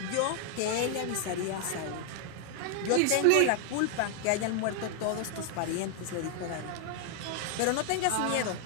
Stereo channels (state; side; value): different; both; correlation 0.00